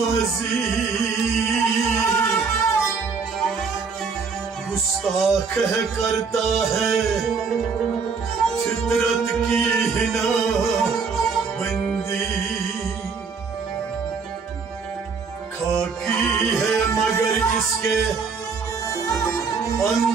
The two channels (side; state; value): left; quieter; 5.2 dB